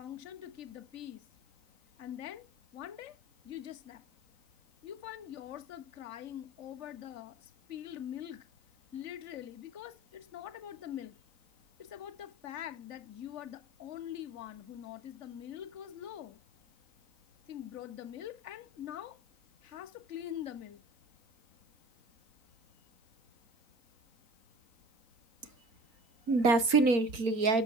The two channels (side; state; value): left; late; 4.4 ms